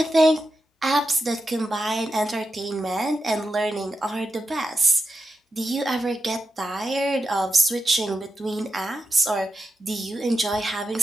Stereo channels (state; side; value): normal; both; correlation 0.88